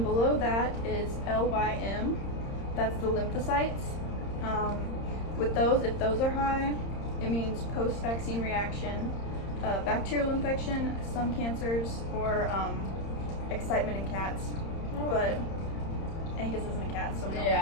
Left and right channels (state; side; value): late; right; 30 ms